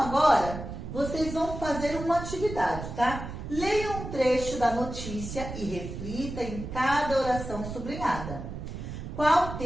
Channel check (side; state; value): right; noise; rumble, 8 dB below the sound